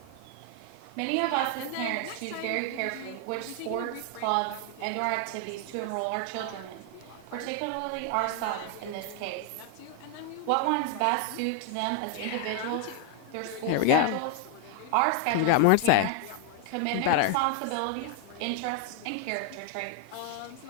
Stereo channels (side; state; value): both; different; correlation 0.00